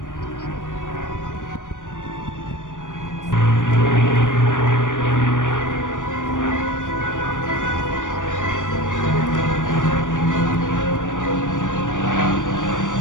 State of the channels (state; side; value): late; right; 0.87 ms